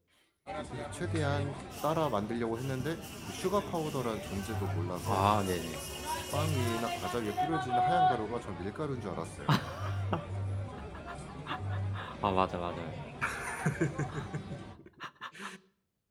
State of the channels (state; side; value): identical; both; correlation 1.00